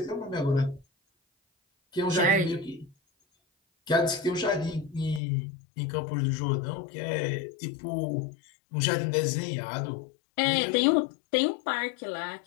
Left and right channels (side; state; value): right; drops out; at 5.2 s